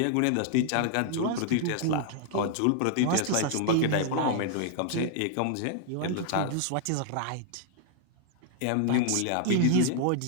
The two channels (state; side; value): different; both; correlation -0.01